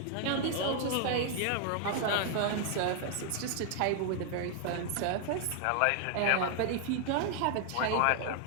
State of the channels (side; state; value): both; different; correlation 0.00